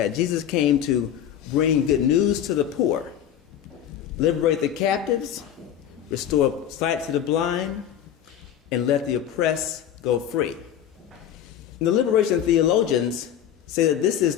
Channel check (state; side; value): quieter; right; 10.0 dB